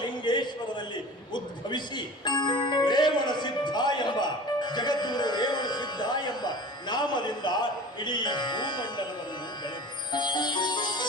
ಉದ್ಭವಿಸಿ ರೇವಣ ಸಿದ್ಧ ಎಂಬ ಜಗದ್ಗುರು ರೇವಣ ಸಿದ್ಧ ಎಂಬ ನಾಮದಿಂದ ಇಡೀ ಭೂಮಂಡಲವನ್ನು ಬೆಳೆದು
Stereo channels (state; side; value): normal; both; correlation 0.39